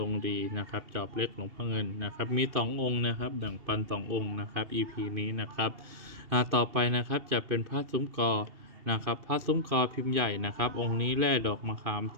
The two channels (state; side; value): late; left; 2.7 ms